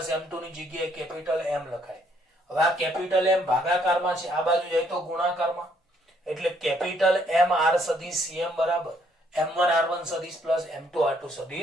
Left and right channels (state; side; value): normal; both; correlation 0.68